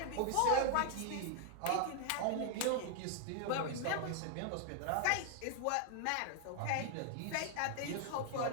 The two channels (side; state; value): both; different; correlation 0.00